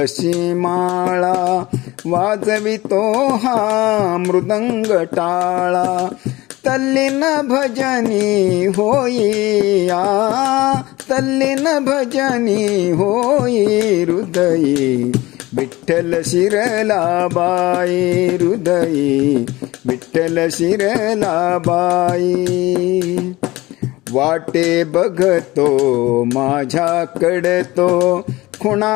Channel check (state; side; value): quieter; right; 19.4 dB